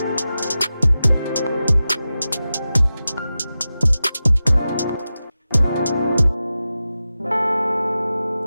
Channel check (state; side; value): inverted; both; correlation -0.93